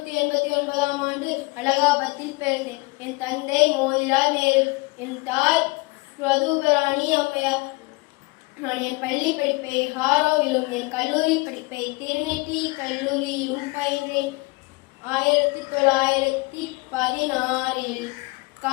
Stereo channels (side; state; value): right; quieter; 25.3 dB